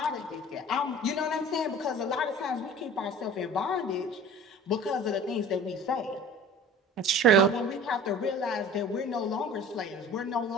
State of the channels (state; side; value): normal; both; correlation 0.42